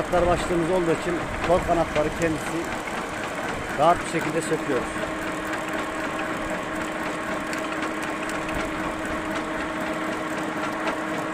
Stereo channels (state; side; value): identical; both; correlation 1.00